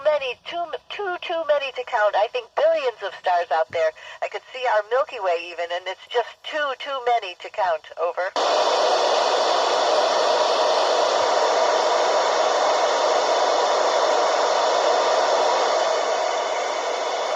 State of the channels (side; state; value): both; identical; correlation 1.00